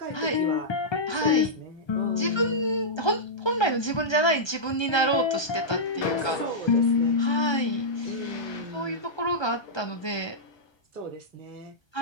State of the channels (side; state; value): right; late; 1.3 ms